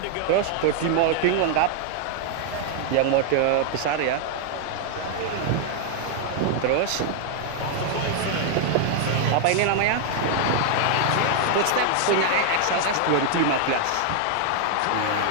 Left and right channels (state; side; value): different; both; correlation 0.00